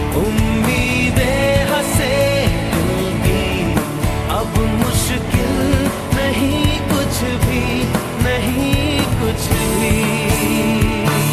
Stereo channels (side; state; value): both; identical; correlation 1.00